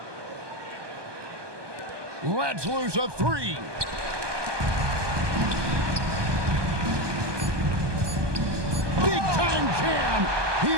Let's lose a three. Big time jam. He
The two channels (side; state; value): left; late; 1.2 ms